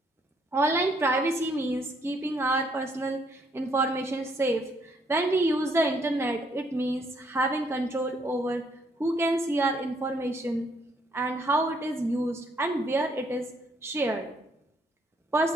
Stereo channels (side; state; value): both; normal; correlation 0.69